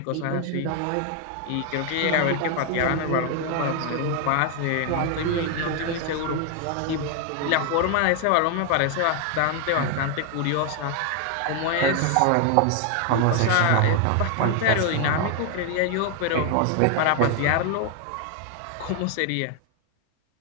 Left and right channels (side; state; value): both; different; correlation 0.00